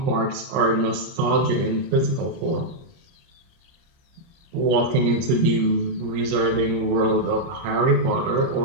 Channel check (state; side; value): late; left; 30 ms